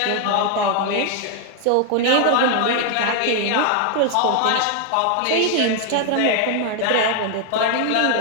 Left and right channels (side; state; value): both; different; correlation 0.00